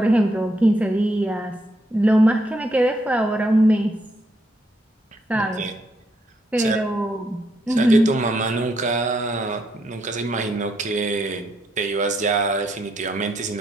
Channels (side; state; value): both; normal; correlation 0.76